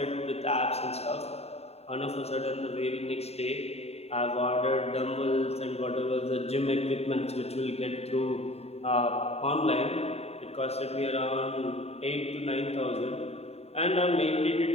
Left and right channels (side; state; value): right; late; 0.30 ms